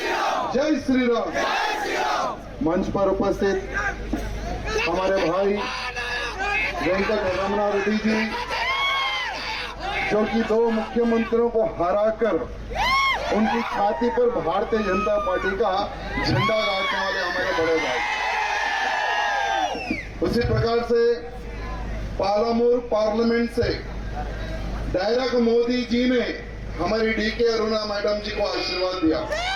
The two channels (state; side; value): identical; both; correlation 1.00